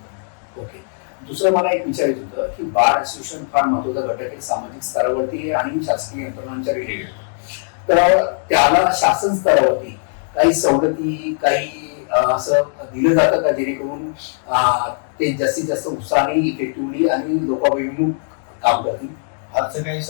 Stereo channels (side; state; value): right; silent; 66 dB below the other